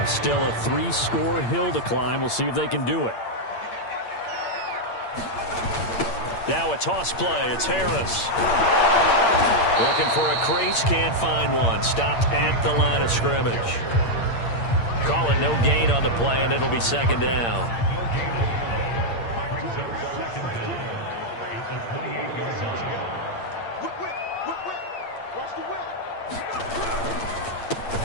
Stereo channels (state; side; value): late; right; 8.7 ms